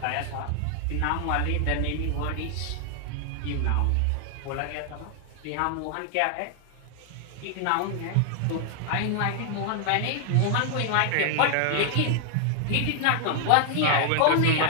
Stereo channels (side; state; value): both; different; correlation 0.00